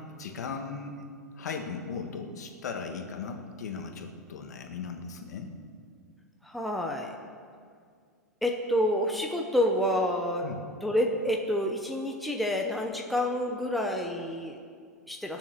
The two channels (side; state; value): both; normal; correlation 0.40